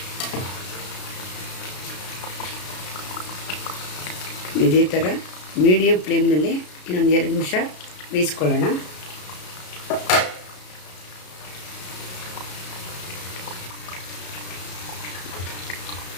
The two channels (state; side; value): late; right; 33 ms